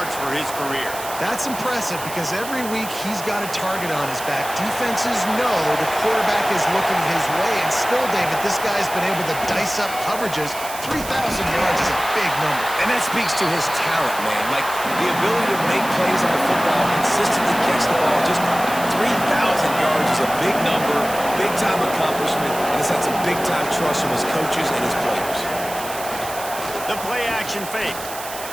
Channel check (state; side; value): noise; right; hiss, 11 dB below the sound